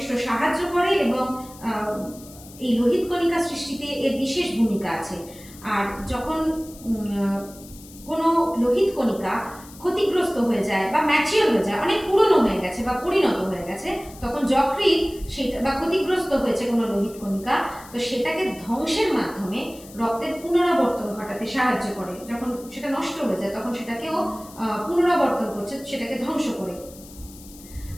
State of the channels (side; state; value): left; noise; hiss, 20 dB below the sound